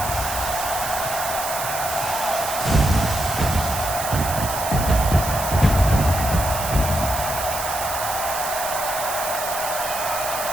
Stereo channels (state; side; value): noise; right; hiss, 6 dB below the sound